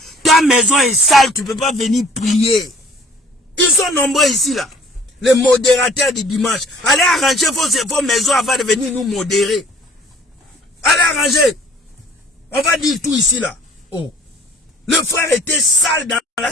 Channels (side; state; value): both; normal; correlation 0.54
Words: ta maison est sale, tu ne peux pas venir prier. Ils sont nombreux ici, là. Les modérateurs du dimanche. Allez arranger vos maisons avant de venir nous modérer. Allez arranger. On va dire tout ici, là. Oh. Le frère était sale dans la